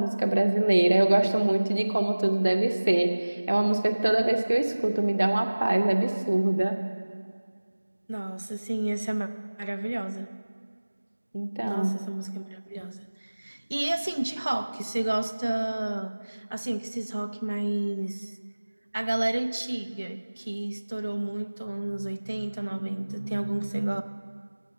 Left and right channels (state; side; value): inverted; both; correlation -1.00